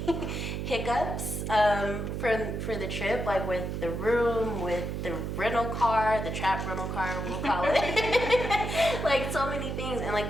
hiccups for the trip, like with the room, with the rental car, the trap rental car, we'll call it. Like so many things, and like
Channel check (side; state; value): right; noise; hum, 3 dB below the sound